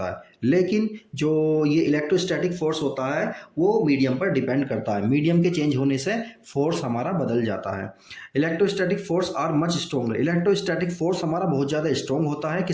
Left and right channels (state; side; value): identical; both; correlation 1.00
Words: है। लेकिन जो ये इलेक्ट्रोस्टैटिक फोर्स होता है वो मीडियम पर डिपेंड करता है। मीडियम के चेंज होने से फोर्स हमारा बदल जाता है। Electrostatic force are much stronger. Electrostatic force हमारा बहुत ज़्यादा स्ट्रॉन्ग होता है,